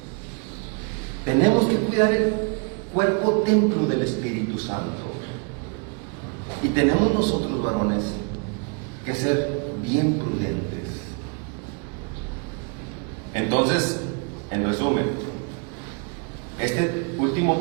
tenemos que cuidar el cuerpo templo del Espíritu Santo. Y tenemos nosotros, varones, que ser bien prudentes. Entonces, en resumen, este último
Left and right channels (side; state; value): left; quieter; 34.8 dB